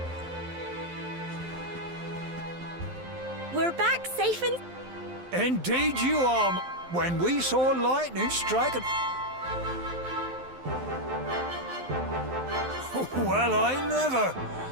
We're back safe and... Indeed you are. When we saw lightning strike at... Well, I never.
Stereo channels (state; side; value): late; left; 12 ms